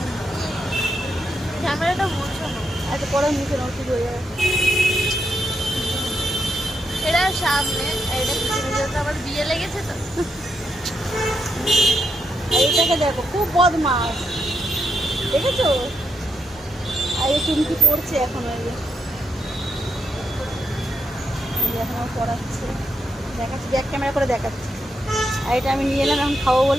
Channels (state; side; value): normal; both; correlation 0.81